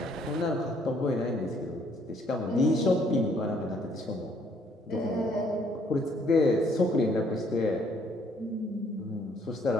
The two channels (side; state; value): both; normal; correlation 0.66